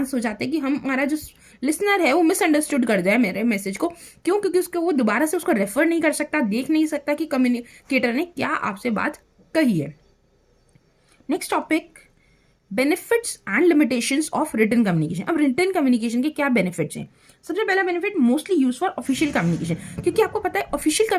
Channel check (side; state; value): both; identical; correlation 1.00